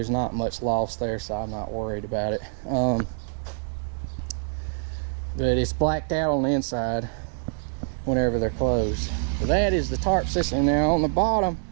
not much loss there, so I'm not worried about it. But it's blacked out on the inside whenever they're closed. So that is the tarp system. Now on the bottom,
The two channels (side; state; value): left; silent; digital silence